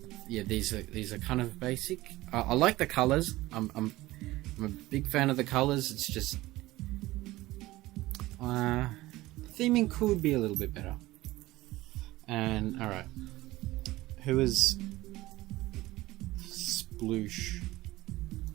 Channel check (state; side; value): quieter; left; 18.1 dB